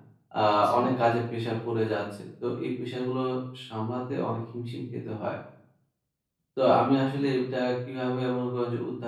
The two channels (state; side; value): identical; both; correlation 1.00